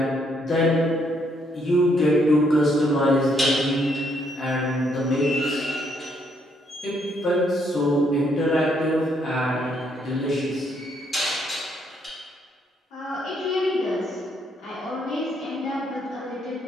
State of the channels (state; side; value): normal; both; correlation 0.72